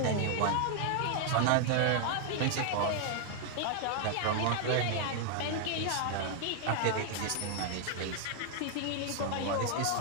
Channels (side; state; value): both; different; correlation 0.00